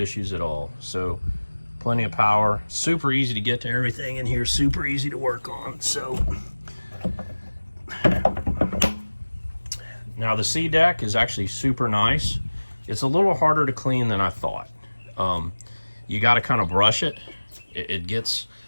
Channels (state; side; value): inverted; both; correlation -1.00